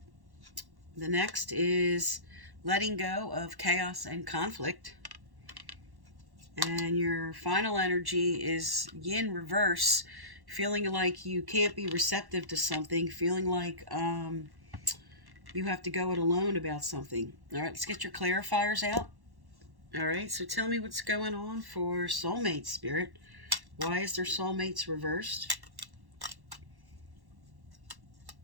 The next is letting go of chaos and conflict. And your final energy is yin reverse, feeling like you can't be receptive to something, feeling like you have to go it alone about something. All right, let's get your clarifiers out. All right, so tell me what's going on for soulmate, Spirit. Why is their soulmates reversed?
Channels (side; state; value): left; late; 1.1 ms